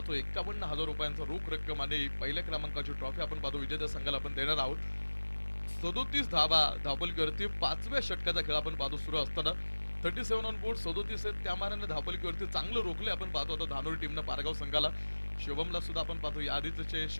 51,000 रुपयांचा रोख रक्कम आणि पहिल्या क्रमांकाची ट्रॉफी आपण पाहतो विजेत्या संघाला आपण देणार आहोत. 37 धावा धावपलकीवरती 5व्या षटकाचा खेळ आपण पाहतो सुरू असताना 37 ऑन बोर्ड 37 आहेत. त्या मानाने धावपलकीवरती चांगलं रोखले आपण पाहतो आता धानोरी टीमनं पारगाव संघाला. शुभमला सुद्धा आपण पाहतो या आधीचे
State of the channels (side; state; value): both; inverted; correlation -1.00